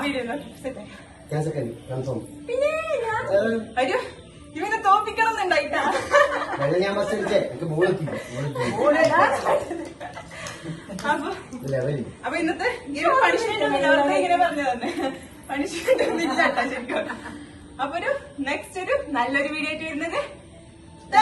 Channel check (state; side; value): identical; both; correlation 1.00